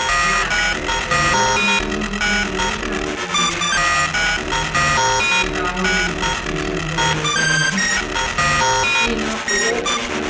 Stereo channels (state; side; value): identical; both; correlation 1.00